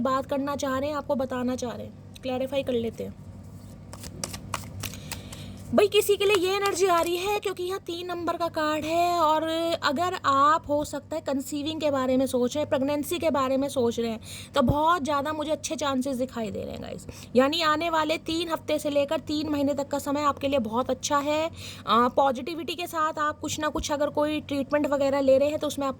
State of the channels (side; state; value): both; identical; correlation 1.00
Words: बात करना चाह रहे हैं, आपको बताना चाह रहे हैं। क्लैरिफाई कर लेते हैं भाई। किसी के लिए ये एनर्जी आ रही है क्योंकि यहाँ 3 नंबर का कार्ड है। और अगर आप हो सकता है कंसीविंग के बारे में सोच रहे हैं, प्रेगनेंसी के बारे में सोच रहे हैं, तो बहुत ज़्यादा मुझे अच्छे चांसेस दिखाई दे रहे हैं गाइस। यानी आने वाले 3 हफ्ते से लेकर 3 महीने तक का समय आपके लिए बहुत अच्छा है। पॉजिटिविटी के साथ आप कुछ ना कुछ अगर कोई ट्रीटमेंट वगैरह ले रहे हैं तो उसमें